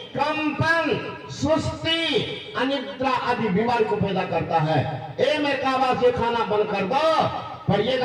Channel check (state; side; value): identical; both; correlation 1.00